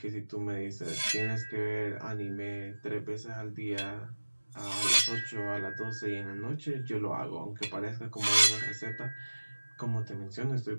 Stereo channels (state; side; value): inverted; both; correlation -1.00